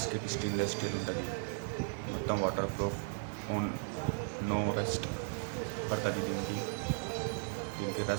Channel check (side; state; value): left; silent; 54 dB below the other